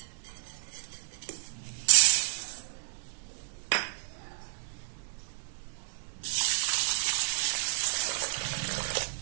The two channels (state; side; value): silent; left; 57 dB below the other